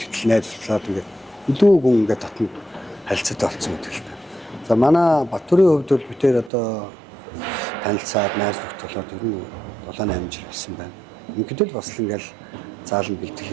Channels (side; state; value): left; drops out; at 6.5 s